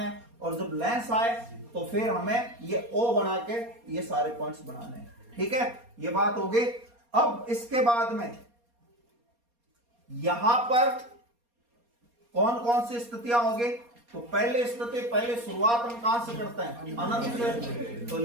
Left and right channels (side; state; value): left; late; 4.2 ms